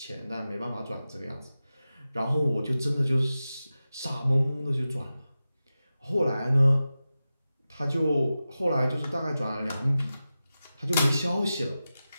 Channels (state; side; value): inverted; both; correlation -0.94